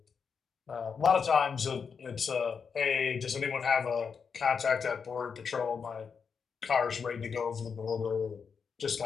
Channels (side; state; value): right; quieter; 6.1 dB